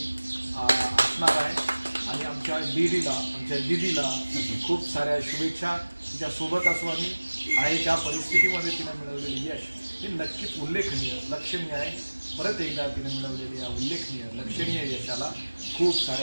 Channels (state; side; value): inverted; both; correlation -1.00